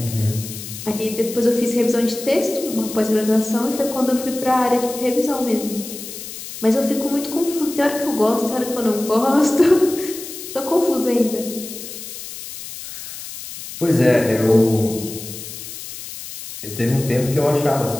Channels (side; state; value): left; noise; hiss, 11 dB below the sound